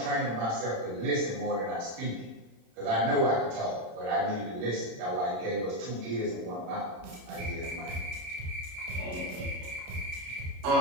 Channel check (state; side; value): late; left; 31 ms